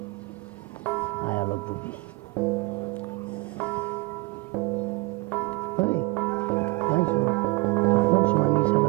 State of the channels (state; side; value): quieter; left; 25.0 dB